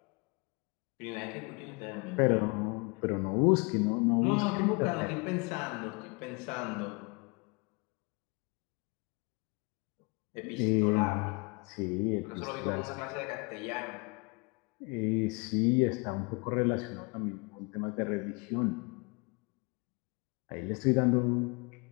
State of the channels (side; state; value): right; quieter; 30.3 dB